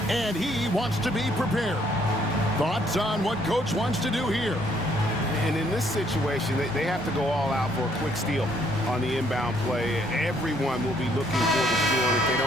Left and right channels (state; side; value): normal; both; correlation 0.67